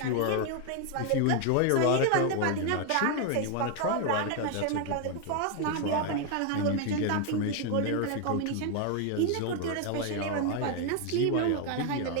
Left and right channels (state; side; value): different; both; correlation 0.01